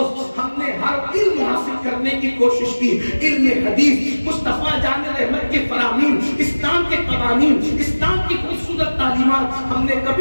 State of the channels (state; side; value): inverted; both; correlation -1.00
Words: ہم نے ہر علم حاصل کرنے کی کوشش کی, علم حدیث, مصطفیٰ جان رحمت کے فرامین, اسلام کے قوانین, اسلام کی خوبصورت تعلیمات ہم نے